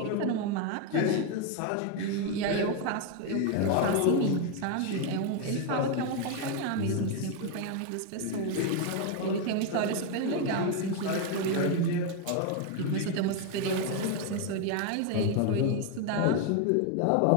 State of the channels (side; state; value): both; different; correlation 0.01